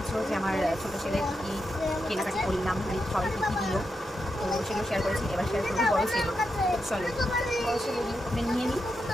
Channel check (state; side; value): normal; both; correlation 0.86